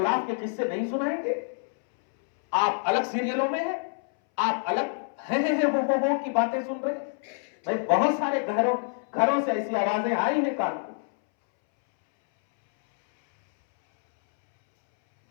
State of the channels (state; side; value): silent; right; 60 dB below the other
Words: के किस्से नहीं सुनाएंगे, आप अलग सीरियलों में हैं, आप अलग है वो की बातें सुन रहे हैं। भाई बहुत सारे घरों से ऐसी आवाजें आई हैं कान को।